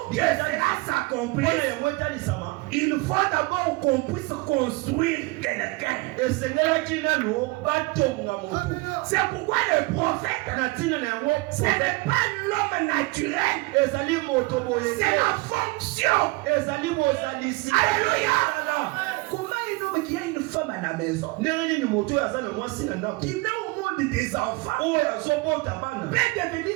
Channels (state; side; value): quieter; left; 23.7 dB